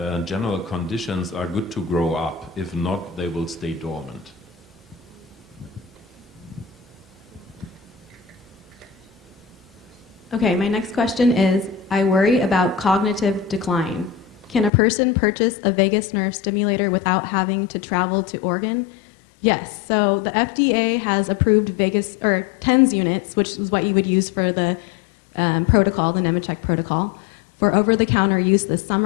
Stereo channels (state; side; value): drops out; right; at 14.7 s